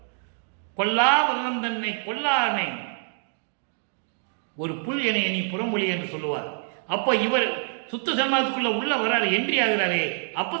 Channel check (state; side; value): silent; left; 61 dB below the other